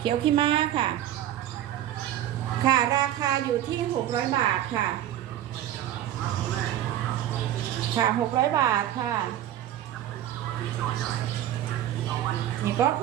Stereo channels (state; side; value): quieter; left; 12.2 dB